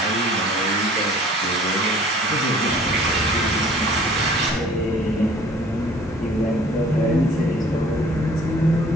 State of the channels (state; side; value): normal; both; correlation 0.51